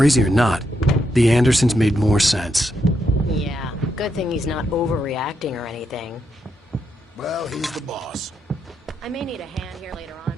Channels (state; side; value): normal; both; correlation 0.81